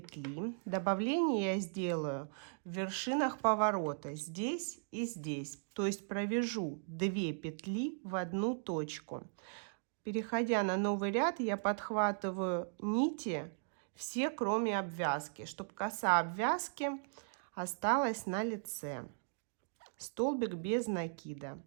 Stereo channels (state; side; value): silent; left; digital silence